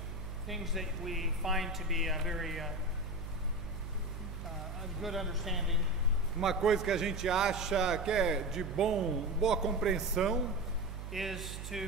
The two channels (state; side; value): noise; right; hum, 8 dB below the sound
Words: things that we find to be a very a good understanding uma coisa que a gente acha que é de boa compreensão is